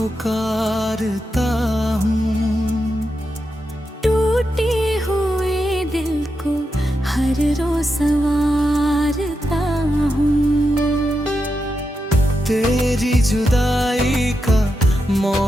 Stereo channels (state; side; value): normal; both; correlation 0.87